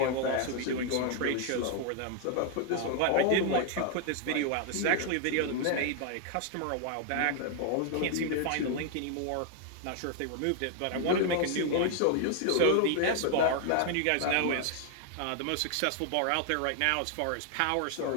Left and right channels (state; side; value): different; both; correlation 0.00